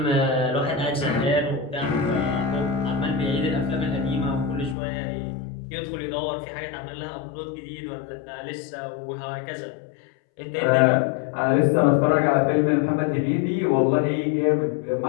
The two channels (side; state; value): right; drops out; at 4.8 s